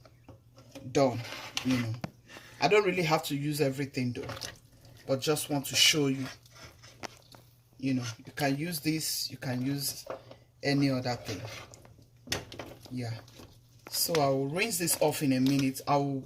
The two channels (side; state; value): both; identical; correlation 1.00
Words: done, you know. I don't really have to use everything though, but just want to show you, you know, you can use this, you can use any other thing. Yeah, so I will rinse this off in a minute. I will